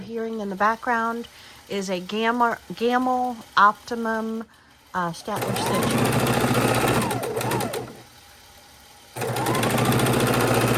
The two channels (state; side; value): identical; both; correlation 1.00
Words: in the background is a Gamma Optimum Statler stitcher.